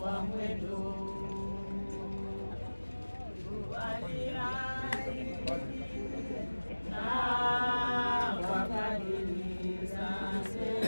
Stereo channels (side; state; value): both; inverted; correlation -1.00